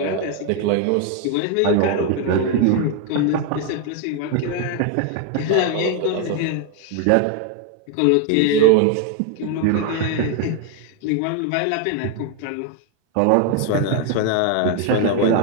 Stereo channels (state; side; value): different; both; correlation 0.01